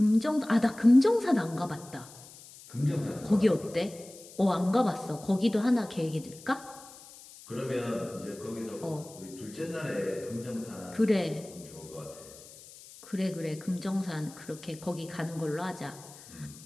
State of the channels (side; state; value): left; noise; hiss, 19 dB below the sound